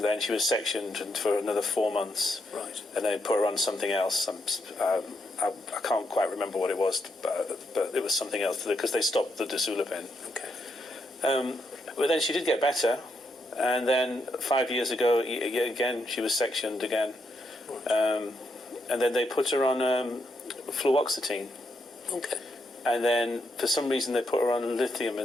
she was sectioned for another 4 months. Right. And they put her on something else. I can't quite remember what it was, but it was something else, because they stopped the Dosulapin. Okay. But then she did get better, and then 5 years ago, again, she was sectioned again. Right. And then they put her on fluoxetine. Okay. And then, for some reason, they put her on lithium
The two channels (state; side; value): normal; both; correlation 0.80